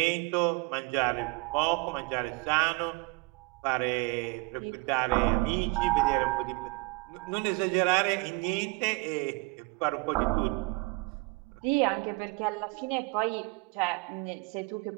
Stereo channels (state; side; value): quieter; left; 26.4 dB